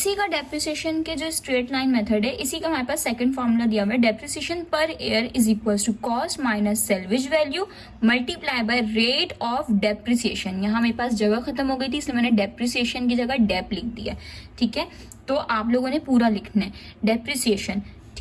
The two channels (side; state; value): both; identical; correlation 1.00